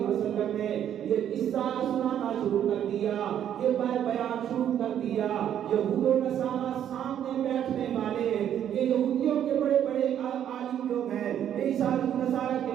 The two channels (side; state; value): left; quieter; 10.0 dB